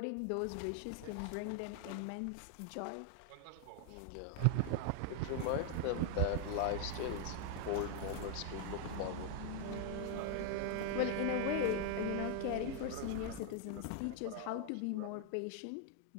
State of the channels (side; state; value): both; different; correlation 0.00